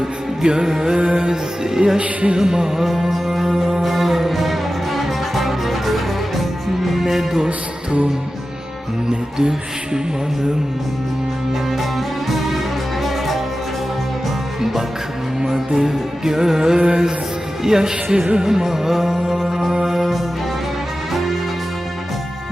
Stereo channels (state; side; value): normal; both; correlation 0.94